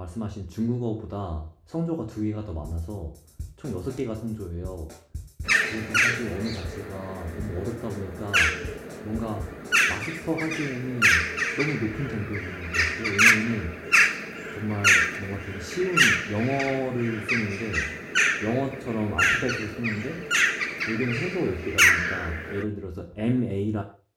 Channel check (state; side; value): identical; both; correlation 1.00